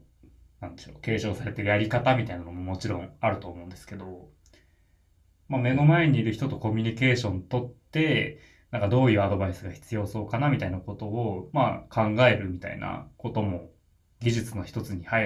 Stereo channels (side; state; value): both; identical; correlation 1.00